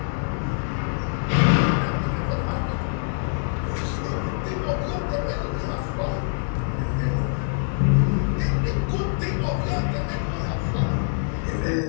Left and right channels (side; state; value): right; silent; 62 dB below the other